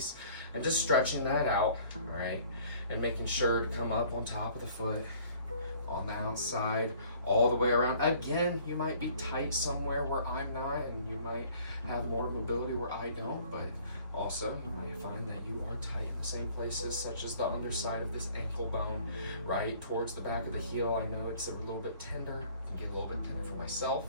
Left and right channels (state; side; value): inverted; both; correlation -0.55